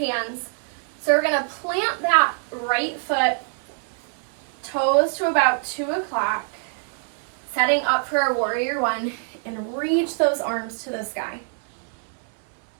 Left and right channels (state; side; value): silent; left; 56 dB below the other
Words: So we're going to plant that right foot, toes to about 2 o'clock, setting up for our warrior one, and reach those arms to the sky.